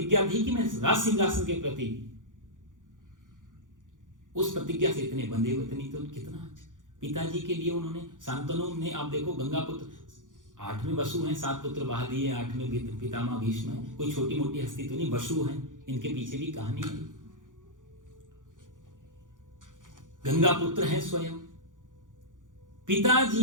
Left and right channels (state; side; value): late; left; 0.88 ms